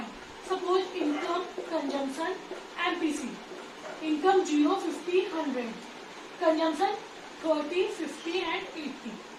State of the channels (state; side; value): identical; both; correlation 1.00